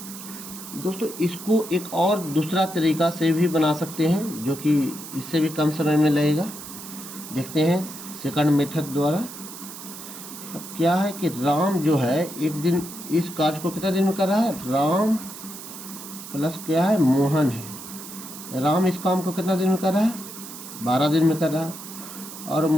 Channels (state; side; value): noise; right; hiss, 12 dB below the sound